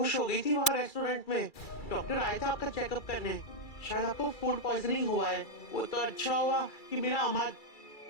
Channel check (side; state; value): right; late; 2.3 ms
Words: हो गई थी वहाँ रेस्टोरेंट में। डॉक्टर आए थे आपका चेकअप करने। शायद आपको फूड पॉइजनिंग हुआ है। वो तो अच्छा हुआ कि मेरा